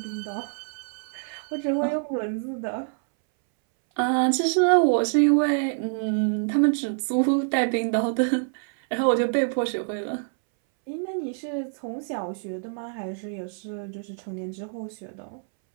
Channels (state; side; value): silent; left; 61 dB below the other